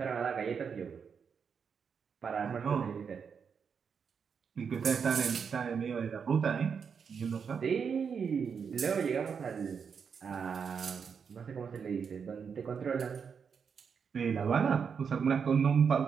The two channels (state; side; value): quieter; left; 6.4 dB